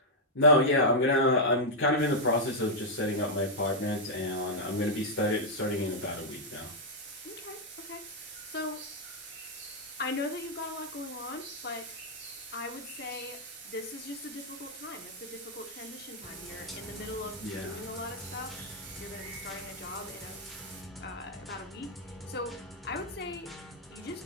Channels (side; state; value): both; normal; correlation -0.04